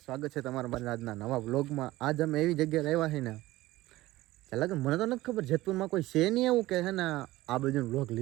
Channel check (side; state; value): left; quieter; 17.6 dB